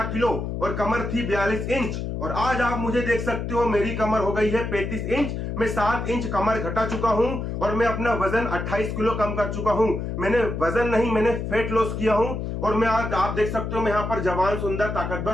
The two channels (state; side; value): noise; left; hum, 4 dB below the sound